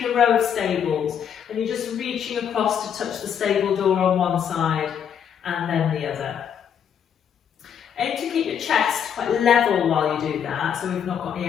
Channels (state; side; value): quieter; right; 8.2 dB